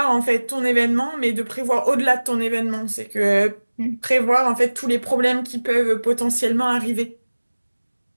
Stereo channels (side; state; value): both; inverted; correlation -1.00